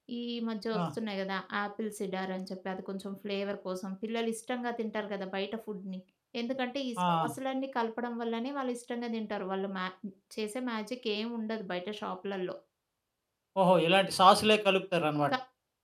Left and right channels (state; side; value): identical; both; correlation 1.00